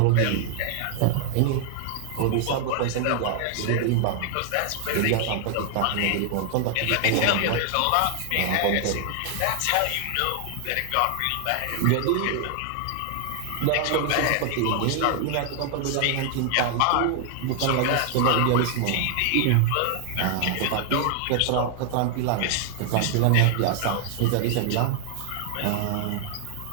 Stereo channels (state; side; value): different; both; correlation 0.00